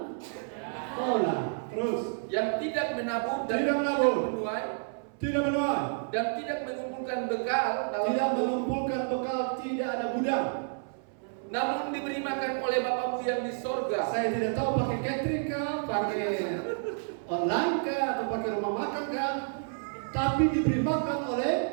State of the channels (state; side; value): silent; left; 58 dB below the other